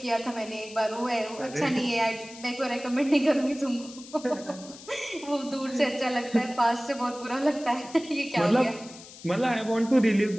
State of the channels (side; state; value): left; noise; hiss, 17 dB below the sound